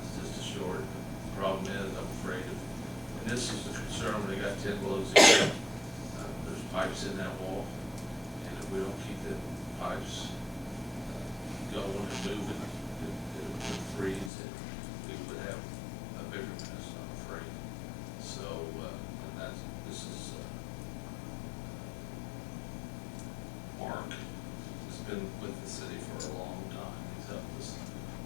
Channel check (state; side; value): drops out; right; at 14.3 s